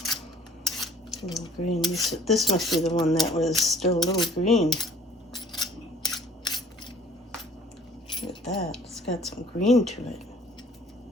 A little green. This must be the one that was still a little green. Look at that. It's got some green to it.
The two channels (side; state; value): both; normal; correlation 0.56